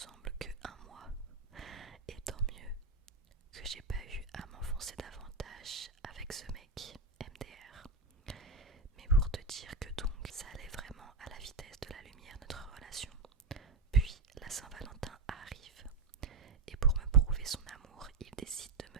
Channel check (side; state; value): left; quieter; 4.0 dB